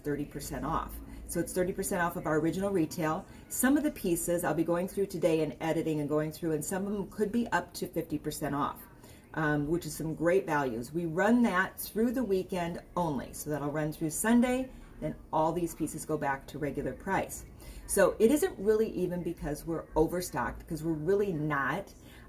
30% off. So it's 30% off of our original retail. Some of the pieces I'll be going through today and editing and going through, and some of them could be up to 50% off, which is some great values. We run that through the weekend only. So that'll run through Sunday, then all these pieces go back to regular price. So it isn't really even because we're overstocked, because we're really not.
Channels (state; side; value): identical; both; correlation 1.00